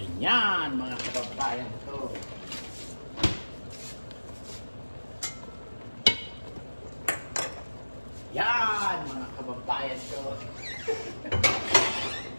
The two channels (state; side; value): inverted; both; correlation -1.00